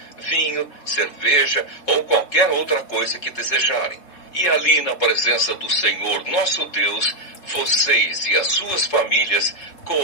vinho, cerveja ou qualquer outra coisa que desejarem. E ali na presença do Senhor nosso Deus, vocês e as suas famílias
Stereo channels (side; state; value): right; late; 3.7 ms